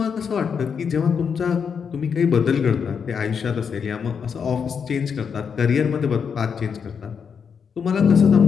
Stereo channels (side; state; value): right; quieter; 6.6 dB